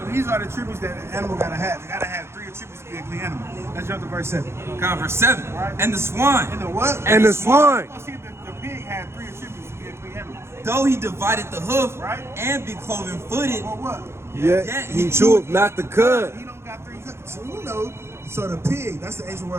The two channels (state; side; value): late; left; 0.12 ms